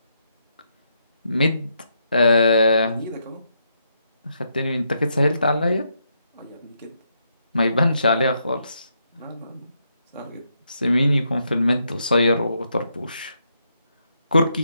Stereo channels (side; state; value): both; inverted; correlation -0.79